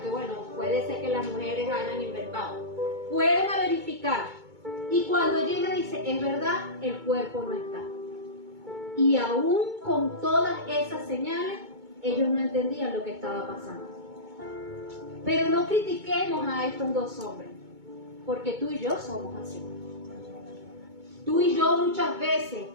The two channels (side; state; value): left; late; 2.2 ms